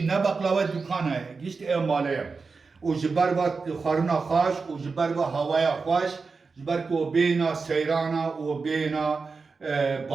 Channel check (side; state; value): left; quieter; 4.6 dB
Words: ne baklava dükkanı işte ev malıya o jibar va xaruna xoş o jibar va havaya xoş jibar ko beyna seyrana o beyna